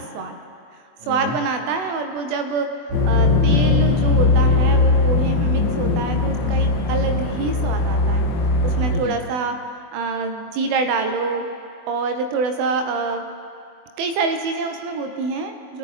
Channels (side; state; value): left; late; 24 ms